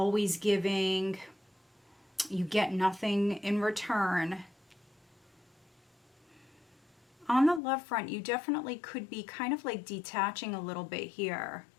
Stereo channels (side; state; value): right; drops out; at 7.6 s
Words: giving, you get nothing in return. On the love front, you definitely could be kind of like detaching a little bit here.